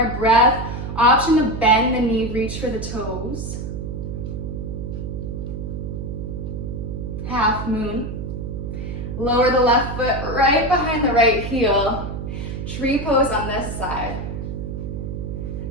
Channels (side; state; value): right; noise; hum, 6 dB below the sound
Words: breath. Option to bend the knee, reach for the toes. Half moon. Lower the left foot right behind the right heel. Tree pose on this side.